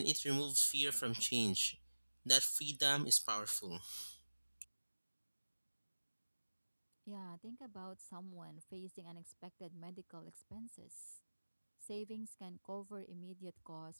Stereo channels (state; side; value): inverted; both; correlation -1.00